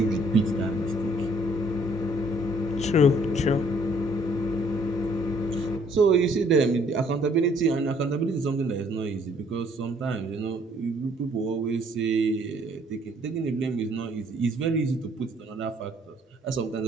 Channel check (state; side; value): normal; both; correlation 0.63